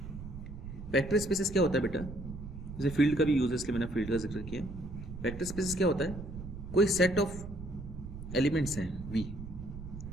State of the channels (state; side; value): noise; right; rumble, 10 dB below the sound